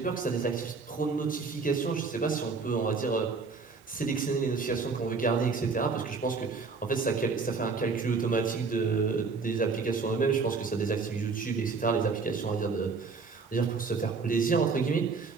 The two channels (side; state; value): left; quieter; 4.6 dB